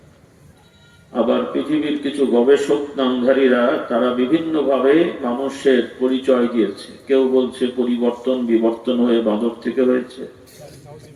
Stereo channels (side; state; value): both; identical; correlation 1.00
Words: আবার পৃথিবীর কিছু গবেষক নামধারীরা তারা বিভিন্ন ভাবে মানুষের পরিচয় দিয়েছে কেউ বলছে পরিবর্তন বিবর্তন হয়ে বাঁদর থেকে হয়েছে